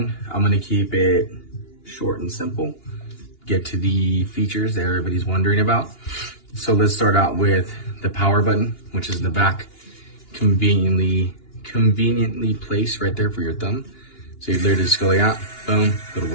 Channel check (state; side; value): late; right; 2.9 ms